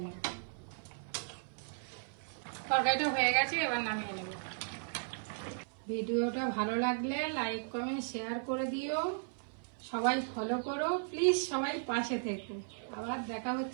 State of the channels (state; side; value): silent; left; 54 dB below the other